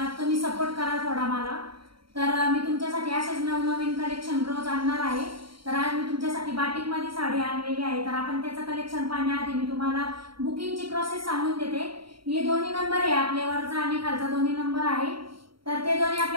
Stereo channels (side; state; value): left; late; 0.74 ms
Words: तुम्ही सपोर्ट करा थोडा मला। तर मी तुमच्यासाठी असेच नवनवीन कलेक्शन रोज आणणार आहे। तर आज मी तुमच्यासाठी बाटिक मध्ये साडी आणलेली आहे। तर आपण त्याचं कलेक्शन पाहण्याआधी मी तुम्हाला बुकिंगची प्रोसेस सांगून देते। हे दोन्ही नंबर आहे, आपले वरचा आणि खालचा दोन्ही नंबर आहे। तर ते दोन्ही